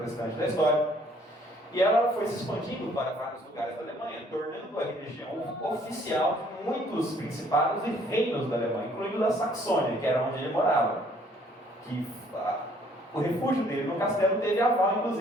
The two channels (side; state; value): both; normal; correlation 0.61